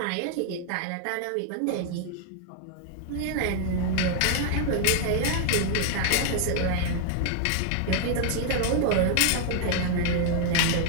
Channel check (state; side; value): different; both; correlation 0.00